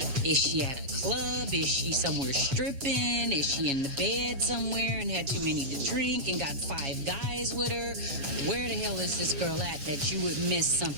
Is she at a club? Is she somewhere stripping? Is she in the bed somewhere and had too many to drink and got 5 guys with her? Where the hell is this girl at that you would miss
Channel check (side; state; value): left; late; 7.2 ms